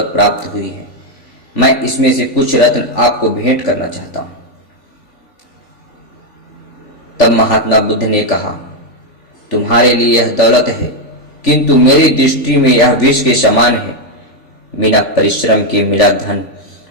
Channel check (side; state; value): right; late; 3.4 ms